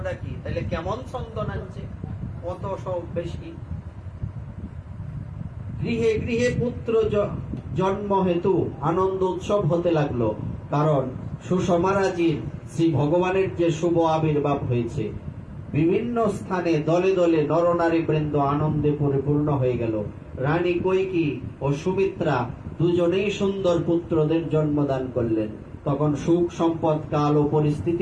কি? তাহলে কেমন চন্দন আনছে, কত সব বেশি। গৃহে গৃহে পুত্র জন্ম হেতু আনন্দ উৎসব হতে লাগলো, কারণ সুষমারাজির শ্রী ভগবানের যে শুভ আবির্ভাব হয়েছে। বিভিন্ন স্থানে দলে দলে নরনারী বৃন্দ আনন্দে পরিপূর্ণ হয়ে গেল। রানী কৈকেয়ী ও সুমিত্রা দুজনেই সুন্দর পুত্রদের জন্মদান করলেন। তখন সুখ, সম্পদ, কাল ও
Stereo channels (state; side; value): identical; both; correlation 1.00